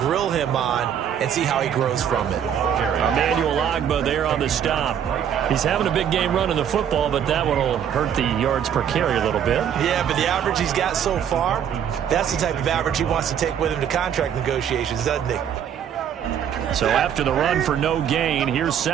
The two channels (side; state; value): left; quieter; 8.9 dB